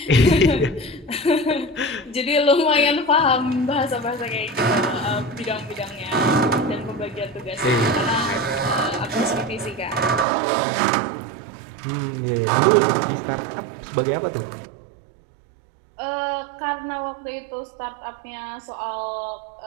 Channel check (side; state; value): left; drops out; at 10.2 s